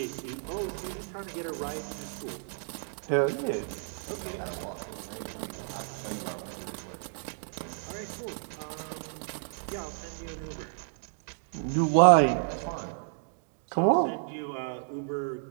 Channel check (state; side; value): silent; left; digital silence